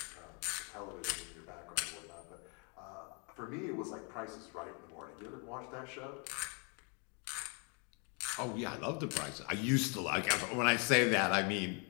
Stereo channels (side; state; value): right; quieter; 36.3 dB